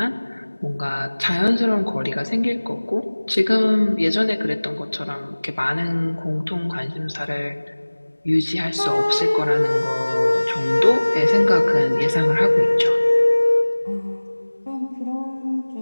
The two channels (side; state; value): both; inverted; correlation -1.00